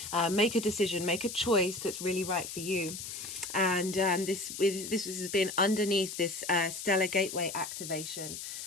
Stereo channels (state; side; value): noise; left; hiss, 8 dB below the sound